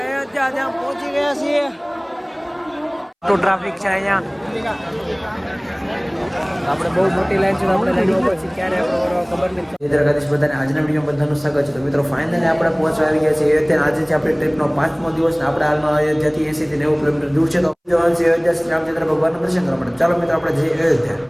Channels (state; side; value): identical; both; correlation 1.00